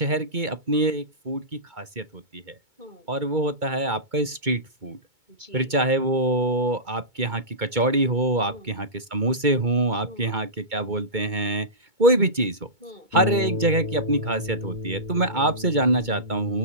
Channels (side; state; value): left; late; 2.2 ms